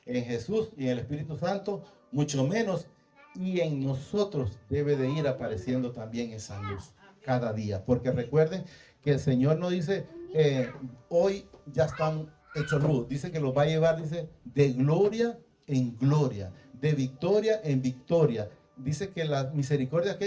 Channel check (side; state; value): both; identical; correlation 1.00